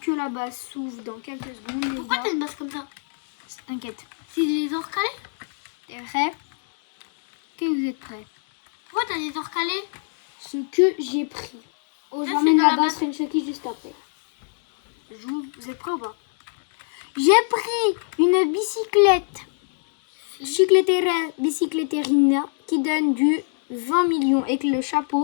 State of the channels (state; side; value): silent; right; 62 dB below the other